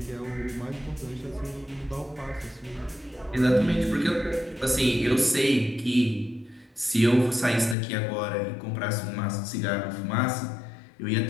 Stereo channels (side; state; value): right; drops out; at 7.8 s